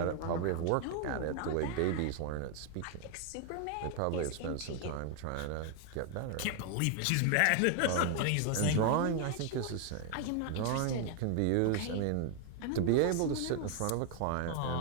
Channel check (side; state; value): both; different; correlation 0.00